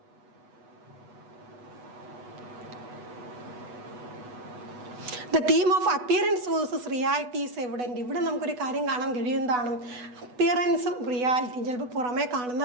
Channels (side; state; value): left; late; 8.1 ms